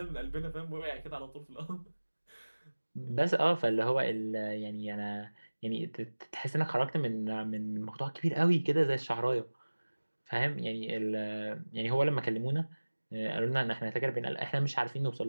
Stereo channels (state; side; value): inverted; both; correlation -1.00